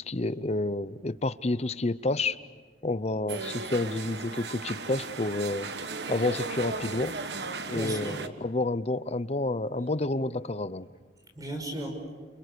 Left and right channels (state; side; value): normal; both; correlation 0.46